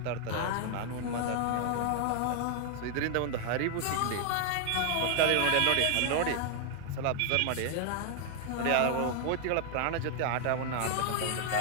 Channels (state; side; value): different; both; correlation 0.00